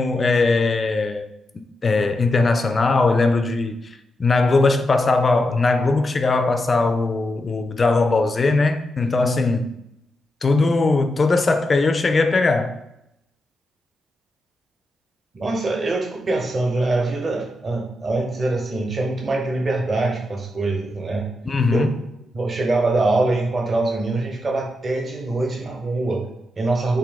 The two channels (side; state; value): both; normal; correlation 0.87